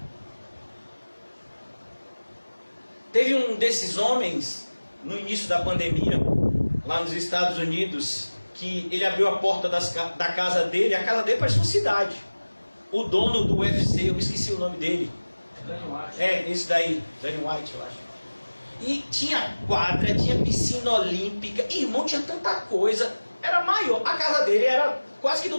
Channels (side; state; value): both; inverted; correlation -1.00